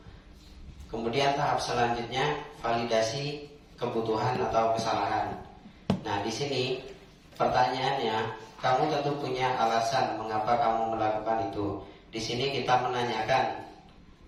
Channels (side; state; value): both; identical; correlation 1.00